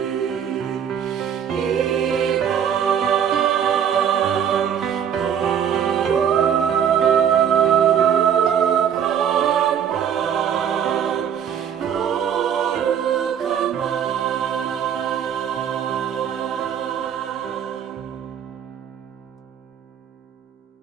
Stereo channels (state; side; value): quieter; left; 8.6 dB